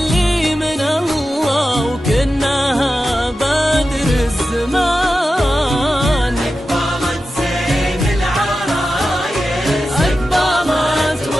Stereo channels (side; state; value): both; normal; correlation 0.92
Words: من الله وكنها بدر الزمان. أقبلت زين العرايس، أقبلت